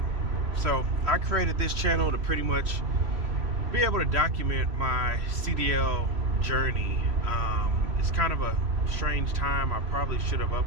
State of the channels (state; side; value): late; left; 3.0 ms